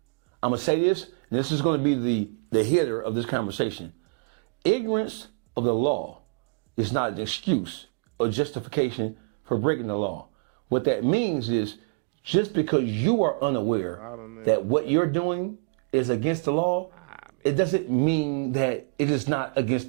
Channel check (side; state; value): left; quieter; 35.1 dB